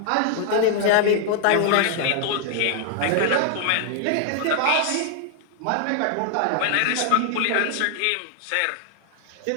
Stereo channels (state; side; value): different; both; correlation 0.00